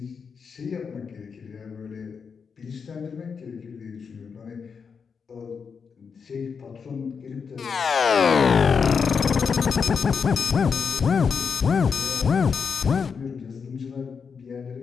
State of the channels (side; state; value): right; quieter; 5.9 dB